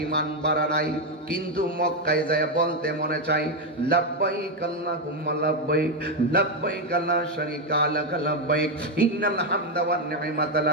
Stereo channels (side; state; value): both; normal; correlation 0.06